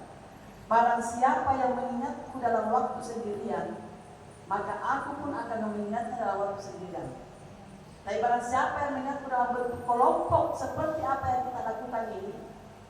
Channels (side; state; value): both; identical; correlation 1.00